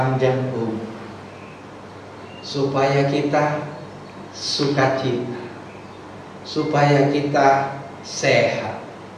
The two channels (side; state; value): both; identical; correlation 1.00